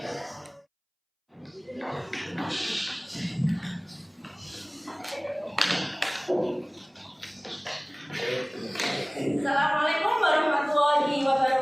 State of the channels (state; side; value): identical; both; correlation 1.00